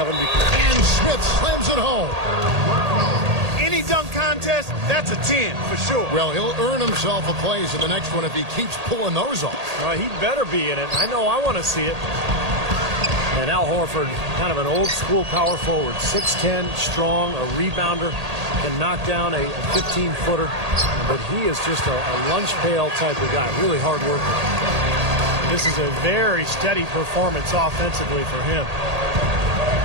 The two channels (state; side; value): late; left; 1.8 ms